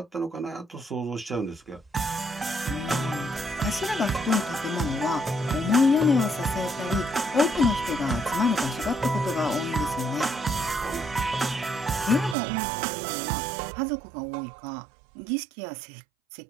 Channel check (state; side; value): drops out; left; at 12.4 s